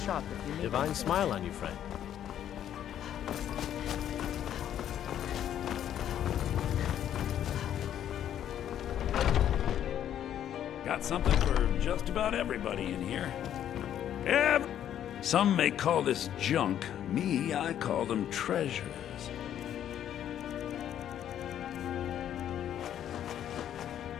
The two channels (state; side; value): quieter; right; 10.5 dB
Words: shop if you need. Divine smile on you, friend. Got something for just about everybody in here. Some may call this junk. Me, I call them treasures.